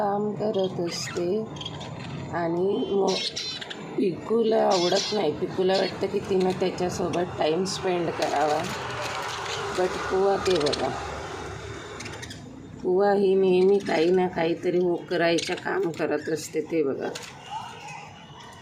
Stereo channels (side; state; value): both; identical; correlation 1.00